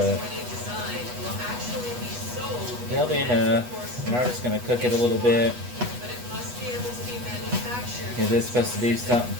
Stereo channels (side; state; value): left; late; 8.2 ms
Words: it'll be enough. And I'm just going to cook it a little bit because it's supposed to do something